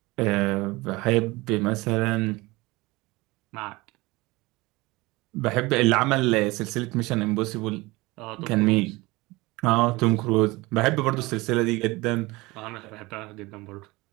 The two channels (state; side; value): quieter; left; 22.1 dB